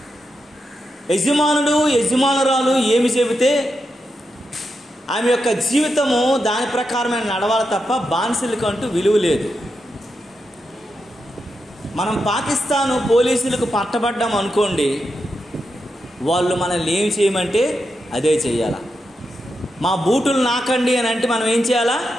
యజమానుడు యజమానురాలు ఏమి చెబితే ఆమె యొక్క జీవితము దాని ప్రకారమే నడవాలి తప్ప బానిసలకంటూ విలువ లేదు. మనం పాకిస్తాను పోలీసులకు పట్టబడ్డాం అనుకోండి, వాళ్ళు మనల్ని ఏం చేయమంటే అదే చెయ్యాలా. మా బూటులు నాకండి అని అంటే మనం ఏం చేయాలా?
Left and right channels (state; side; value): normal; both; correlation 0.86